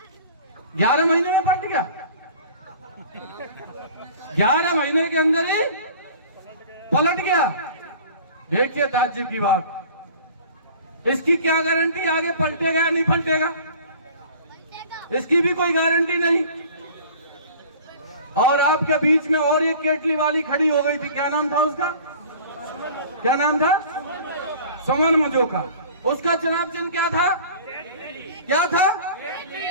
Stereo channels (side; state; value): both; inverted; correlation -0.44